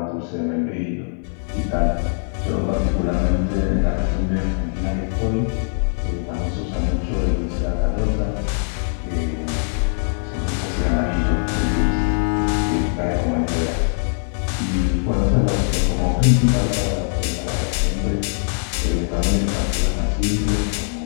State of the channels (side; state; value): right; silent; 65 dB below the other